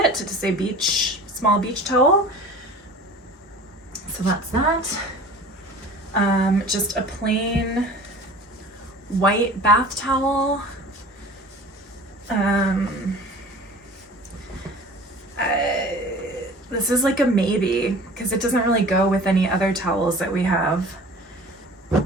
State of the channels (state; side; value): normal; both; correlation 0.42